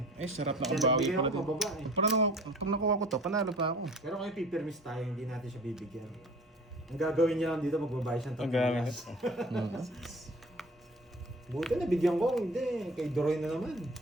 Ay, sarap na Kaya kabawi nagbigay pala ako dito. pababa eh. Parang pag nakuha ko to, panalo pa ako. Pero kung ipipirmis tayo, hindi natin siya bibigyan. Ang gagawin niya lang dito, magbabayad siyang Ang gamit. $3. Buti nabigyan ko, hindi. Kay Doroy na naman.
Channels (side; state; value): both; normal; correlation 0.45